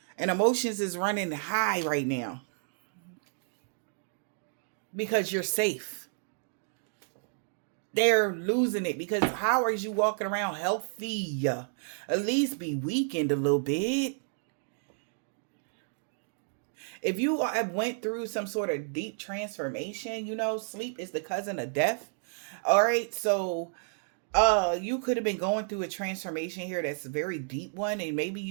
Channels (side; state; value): left; silent; digital silence